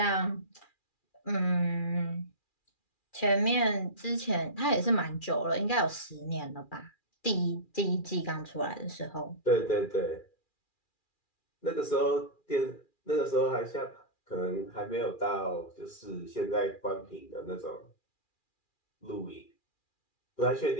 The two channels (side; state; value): right; late; 2.4 ms